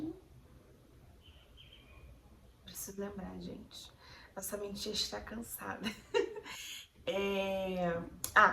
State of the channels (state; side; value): identical; both; correlation 1.00